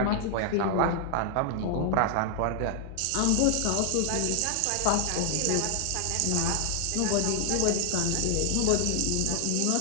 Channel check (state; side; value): different; both; correlation 0.00